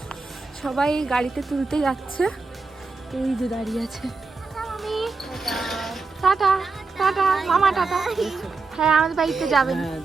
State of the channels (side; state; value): left; quieter; 4.1 dB